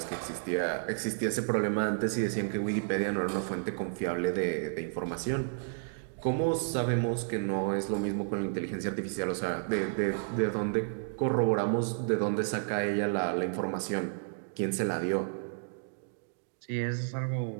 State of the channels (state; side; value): silent; left; digital silence